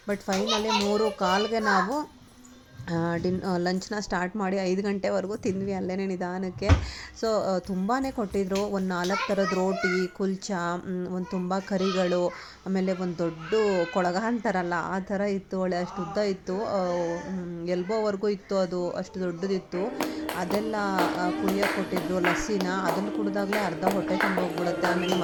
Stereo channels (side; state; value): both; identical; correlation 1.00